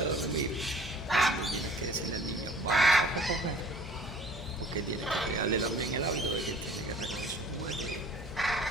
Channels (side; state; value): right; noise; hum, 18 dB below the sound